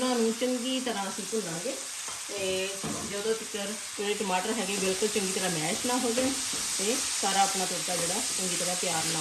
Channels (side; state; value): both; identical; correlation 1.00